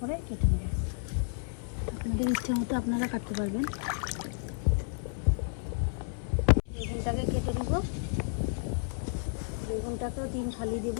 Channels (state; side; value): silent; right; 57 dB below the other